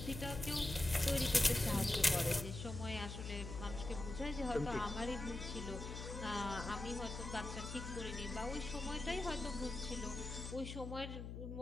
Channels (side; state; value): left; noise; hum, 7 dB below the sound